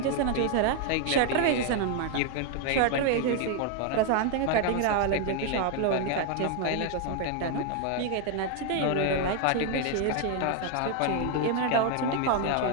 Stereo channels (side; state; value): both; different; correlation 0.01